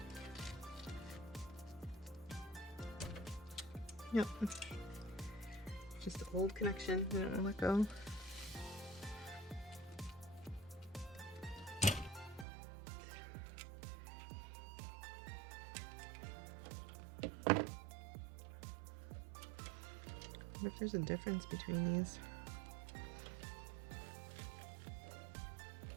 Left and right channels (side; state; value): left; drops out; at 12.5 s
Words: Yep. Just an old connection. I don't want to let go. I wonder if there's a difference between these.